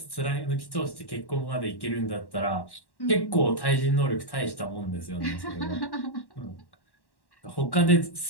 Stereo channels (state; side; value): late; right; 1.1 ms